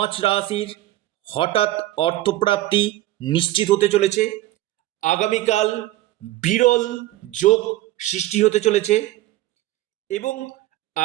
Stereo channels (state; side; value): quieter; left; 15.9 dB